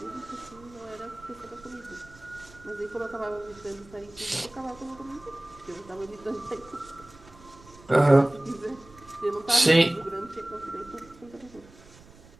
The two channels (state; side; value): noise; right; rumble, 23 dB below the sound